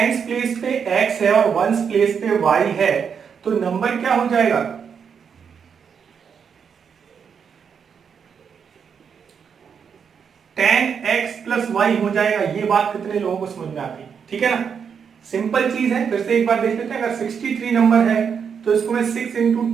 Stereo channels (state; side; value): quieter; left; 6.8 dB